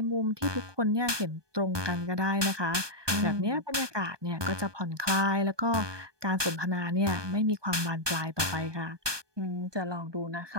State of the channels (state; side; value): late; left; 1.2 ms